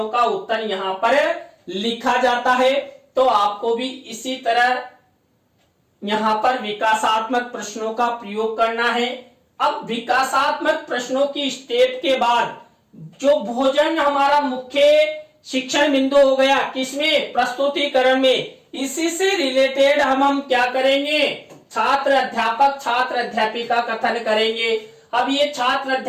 का उत्तर यहाँ पर लिखा जाता है। तो आपको भी इसी तरह यहाँ पर विकासात्मक प्रश्नों का प्रयोग करना है। अब विकासात्मक प्रश्नों की स्टेप के बाद जो भोजन हमारा मुख्य शिक्षण बिंदु हो गया किसमें, प्रस्तुतिकरण में। इसी से रिलेटेड हम क्या करेंगे, छात्र अध्यापिका कथन करेंगे। अब ये छात्र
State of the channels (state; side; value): identical; both; correlation 1.00